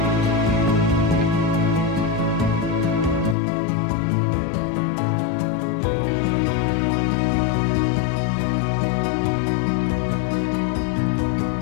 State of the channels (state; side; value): drops out; right; at 3.4 s